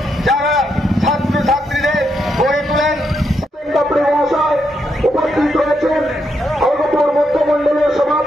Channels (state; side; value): normal; both; correlation 0.80